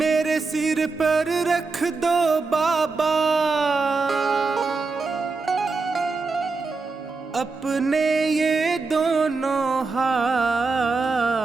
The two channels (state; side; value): quieter; left; 4.1 dB